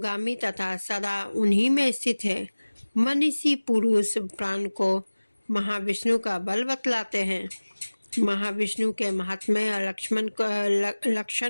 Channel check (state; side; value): inverted; both; correlation -1.00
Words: तथा सदा उन्हीं में स्थित है। मनीषी पुरुष प्राण को महाविष्णु का बल बतलाते हैं। महाविष्णु के महात्म्य